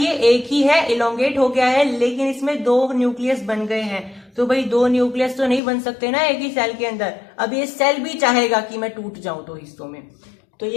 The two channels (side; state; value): right; drops out; at 5.6 s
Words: एक ही है, इलोंगेट हो गया है, लेकिन इसमें दो न्यूक्लियस बन गए हैं। तो भाई दो न्यूक्लियस तो नहीं बन सकते ना एक ही सेल के अंदर। अब ये सेल भी चाहेगा कि मैं टूट जाऊं दो हिस्सों में, तो